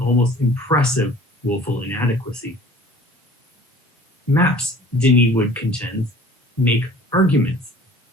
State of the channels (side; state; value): both; normal; correlation 0.47